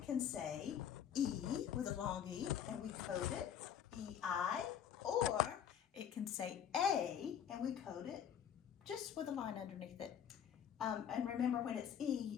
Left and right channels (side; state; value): right; quieter; 8.9 dB